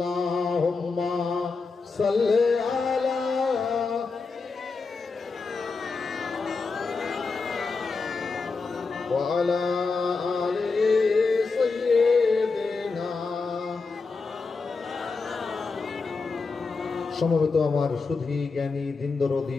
सल्ले आला व आला आले सय्यिदिना সমবেত আমার সুধী জ্ঞানী দিন দরদি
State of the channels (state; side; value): quieter; right; 4.3 dB